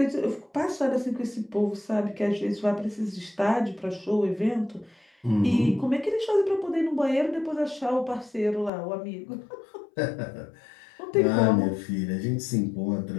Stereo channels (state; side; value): drops out; right; at 8.7 s